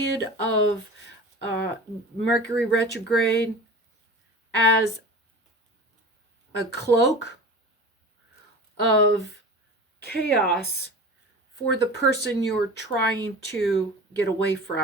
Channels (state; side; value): normal; both; correlation 0.35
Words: of Mercury retrograde as a cloak of chaos for the person you're trying to get away